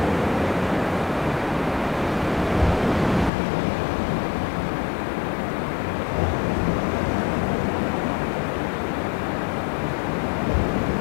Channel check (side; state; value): right; drops out; at 3.3 s